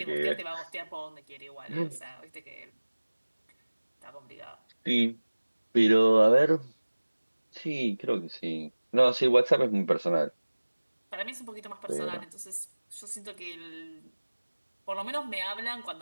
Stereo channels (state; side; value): inverted; both; correlation -1.00